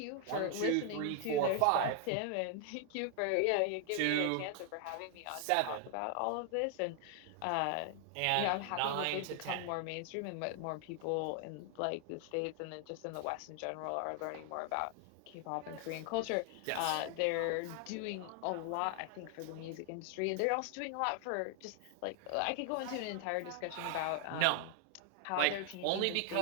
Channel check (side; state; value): both; different; correlation 0.00